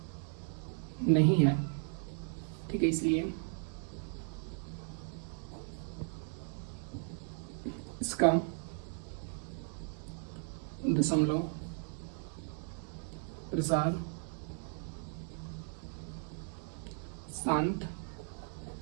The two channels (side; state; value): left; silent; 53 dB below the other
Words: नहीं है, ठीक है। इसलिए इसका दशमलव प्रसार शांत